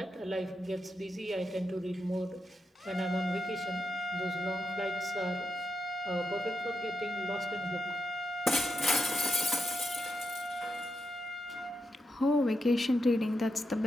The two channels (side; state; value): both; normal; correlation 0.85